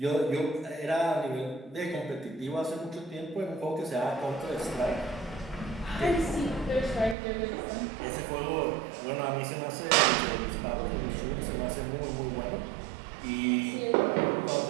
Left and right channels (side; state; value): left; drops out; at 7.2 s